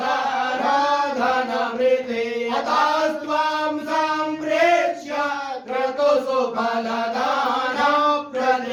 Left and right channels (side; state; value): both; identical; correlation 1.00